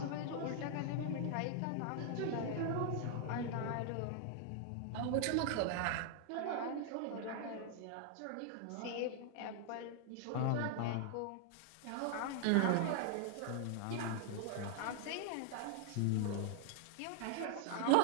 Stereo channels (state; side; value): different; both; correlation 0.00